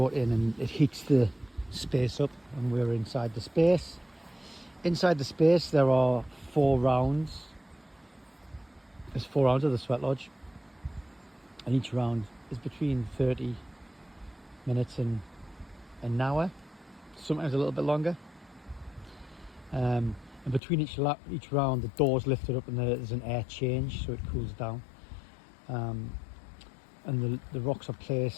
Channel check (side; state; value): right; drops out; at 20.6 s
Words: in, and it heats the space up, and we're inside the space. Inside the space there are 4 rounds. There's 4 rounds of the Sweat Lodge, and each round is between 30 minutes and an hour, sometimes a little bit longer. And between each round the door's lifted up and there's an air change, so it cools down. And the rocks are